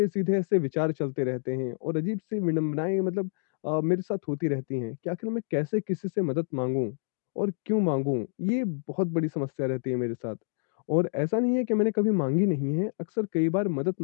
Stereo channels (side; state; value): right; silent; digital silence